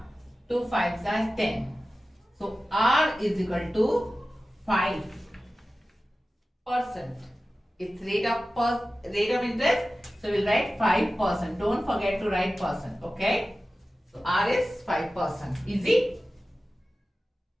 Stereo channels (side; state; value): both; normal; correlation 0.95